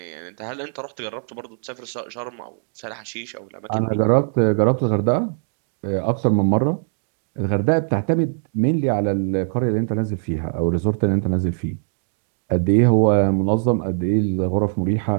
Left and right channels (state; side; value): silent; left; digital silence